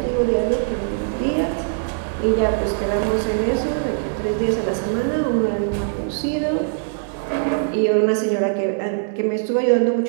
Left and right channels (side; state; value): left; silent; digital silence